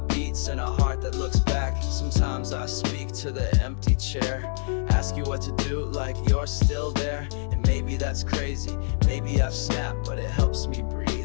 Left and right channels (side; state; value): right; silent; digital silence